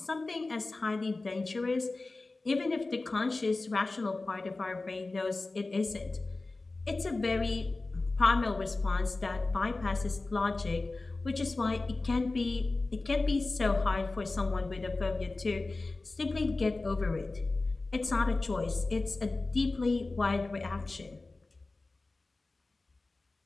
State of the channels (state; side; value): quieter; right; 3.3 dB